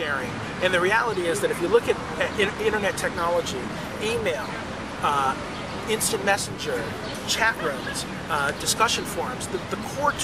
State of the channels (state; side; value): identical; both; correlation 1.00